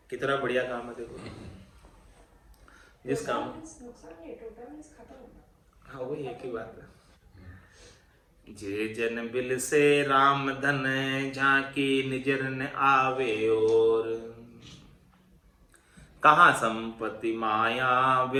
कितना बढ़िया काम है देखो। जिस काम, हाँ वही एक ही बात है। जे जन बिल से राम धन, झांकी निजर न आवे और। कहाँ संपत्ति माया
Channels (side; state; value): both; identical; correlation 1.00